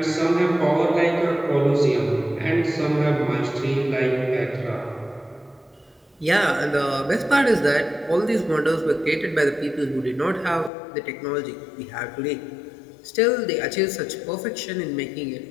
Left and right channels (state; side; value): drops out; right; at 10.7 s